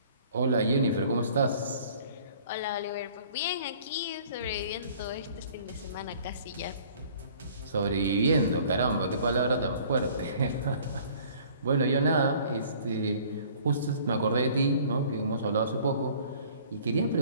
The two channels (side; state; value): both; inverted; correlation -0.53